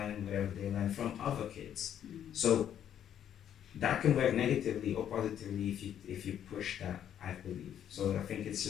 whatever they learn from other kids. So that can work negatively or positively if you push that, I believe. So I think it's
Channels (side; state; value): right; quieter; 9.9 dB